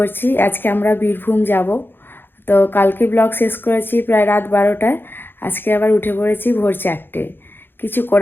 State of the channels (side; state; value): right; late; 0.10 ms